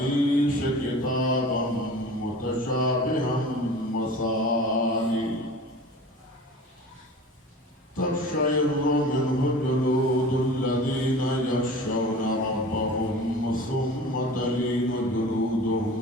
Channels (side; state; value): both; normal; correlation 0.39